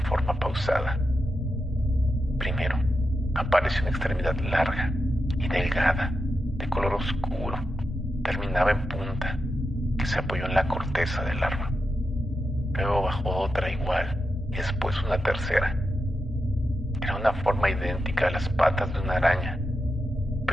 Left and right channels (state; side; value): normal; both; correlation 0.88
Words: pausada. Primero, apareció una extremidad larga y delgada, de color oscuro, terminaba en punta, que se apoyó en la corteza del árbol. Luego bajó otra igual y después una tercera. Era una forma idéntica a las patas de una araña,